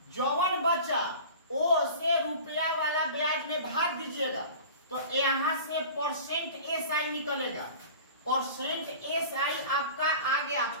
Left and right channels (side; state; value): both; inverted; correlation -0.39